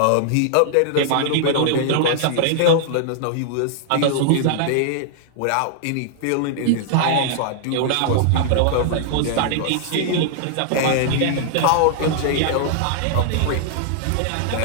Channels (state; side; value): different; both; correlation -0.01